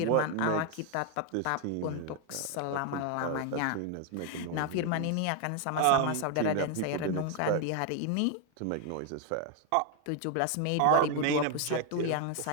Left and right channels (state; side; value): different; both; correlation 0.01